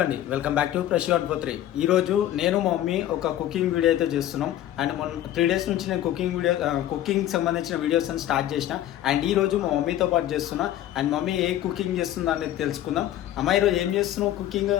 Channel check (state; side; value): quieter; right; 12.7 dB